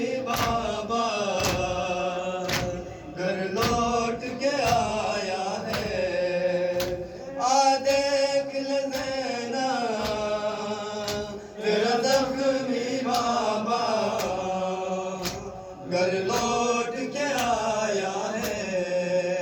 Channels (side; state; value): both; identical; correlation 1.00